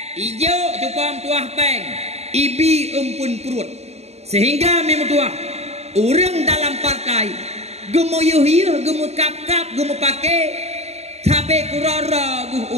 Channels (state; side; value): late; left; 0.31 ms